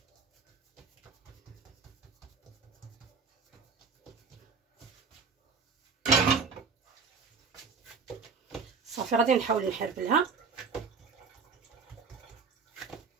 صافي غادي نحاول نحربلها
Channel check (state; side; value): quieter; left; 5.1 dB